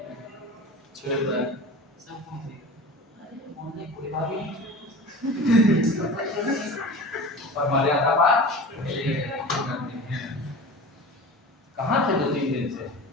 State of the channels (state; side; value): normal; both; correlation 0.35